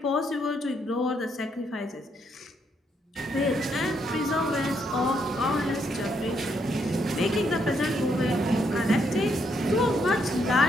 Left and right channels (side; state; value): both; normal; correlation 0.75